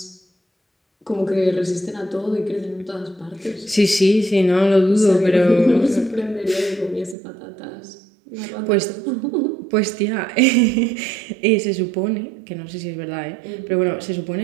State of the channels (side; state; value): left; drops out; at 7.2 s